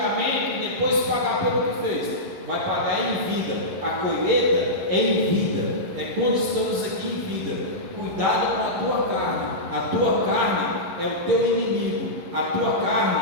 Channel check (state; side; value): late; left; 11 ms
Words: e depois pagar pelo que fez. Vai pagar em vida. A colheita é em vida, é quando estamos aqui em vida. Cuidado com a tua carne. A tua carne é o teu inimigo, a tua